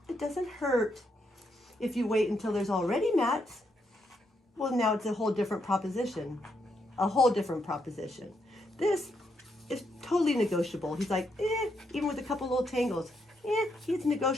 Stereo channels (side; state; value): both; normal; correlation 0.78